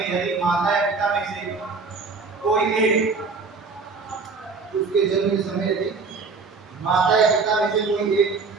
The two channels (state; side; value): quieter; left; 4.5 dB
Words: यदि माता या पिता में से कोई एक, उसके जन्म के समय यदि माता या पिता में से कोई एक